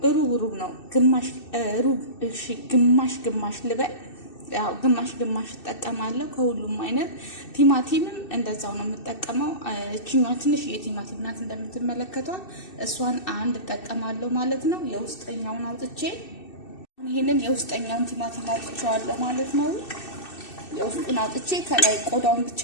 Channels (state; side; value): late; right; 2.6 ms